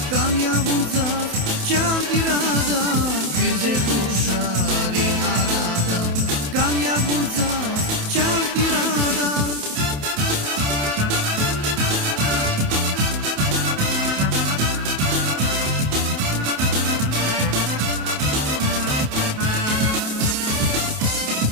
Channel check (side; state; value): left; late; 27 ms